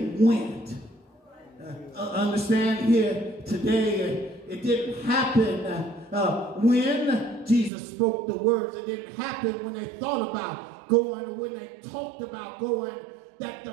went, understand here today, it didn't happen when Jesus spoke the words. It didn't happen when they thought about going, or when they talked about going. That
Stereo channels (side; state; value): left; drops out; at 7.7 s